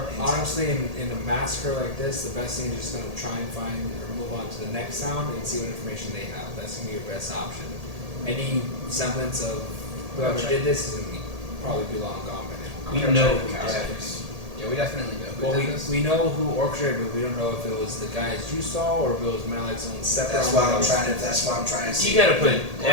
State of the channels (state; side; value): late; left; 1.8 ms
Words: Honestly, in a massacre like this, the best thing is just gonna try and find or move on to the next town and see what information they have. That's gonna be your best option. Any semblance of whoever did this is gonna probably be long gone by now. We know who did this. Yeah, we definitely know who Well, did this. we know who orchestrated, but we don't know if it was the guys you saw or if it was Malik's own separate. That's why I'm trying to see. You gotta put